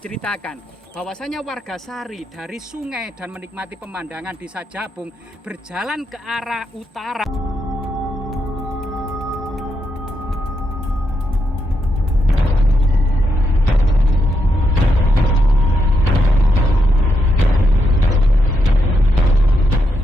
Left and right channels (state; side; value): normal; both; correlation 0.82